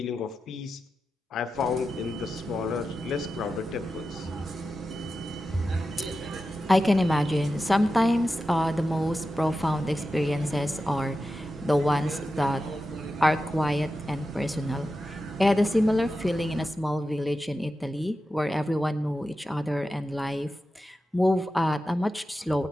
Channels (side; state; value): both; normal; correlation 0.91